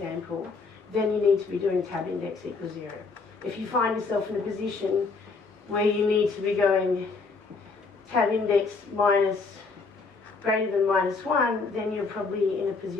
then you need to be doing tab index equals 0. If you find yourself in a position where you need to be going tab index minus greater than -1, then you're probably in a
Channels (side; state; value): right; quieter; 4.3 dB